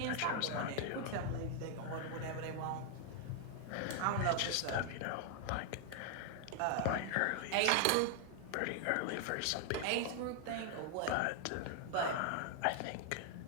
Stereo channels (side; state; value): both; different; correlation 0.00